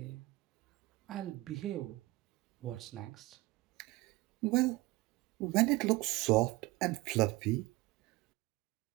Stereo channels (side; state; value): left; quieter; 20.8 dB